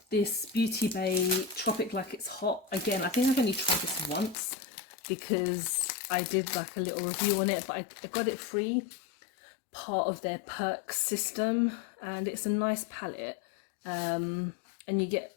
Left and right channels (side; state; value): right; drops out; at 4.4 s